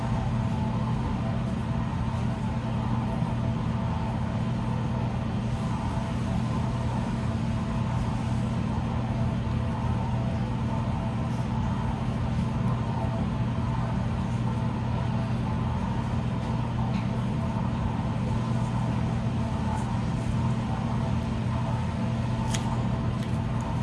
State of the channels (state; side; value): identical; both; correlation 1.00